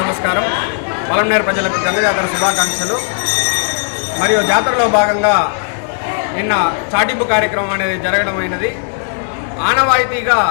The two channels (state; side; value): silent; right; digital silence